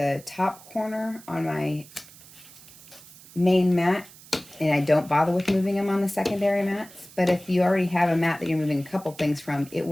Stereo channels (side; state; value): right; noise; hiss, 21 dB below the sound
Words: top corner on my main mat, and I don't bother with moving them on the secondary mats. But if you already have a mat that you're moving a couple things from, it